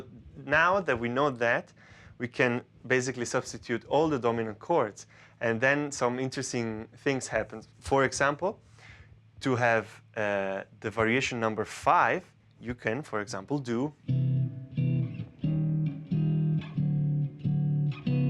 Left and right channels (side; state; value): both; identical; correlation 1.00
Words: now that we know that, we can basically substitute all the dominant chords, and then some interesting things happen. For example, to have the variation number 5, you can, for example, do